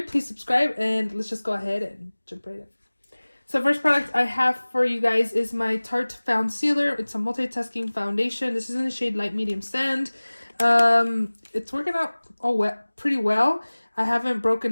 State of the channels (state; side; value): inverted; both; correlation -1.00